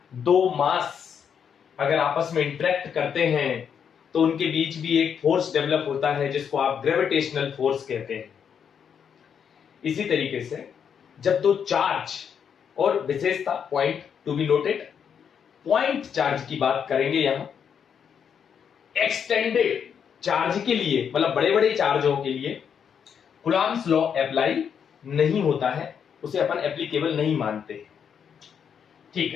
दो मास अगर आपस में इंटरेक्ट करते हैं तो उनके बीच भी एक फोर्स डेवलप होता है जिसको आप ग्रेविटेशनल फोर्स कहते हैं। इसी तरीके से जब दो चार्ज, और विशेषता point to be noted, point charge की बात करेंगे यहां, एक्सटेंडेड चार्ज के लिए, मतलब बड़े बड़े चार्जों के लिए कूलॉम्स लॉ अप्लाई नहीं होता है, उसे अपन एप्लीकेबल नहीं मानते। ठीक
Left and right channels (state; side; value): quieter; right; 7.6 dB